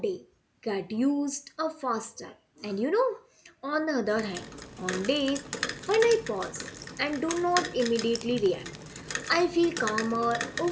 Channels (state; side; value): identical; both; correlation 1.00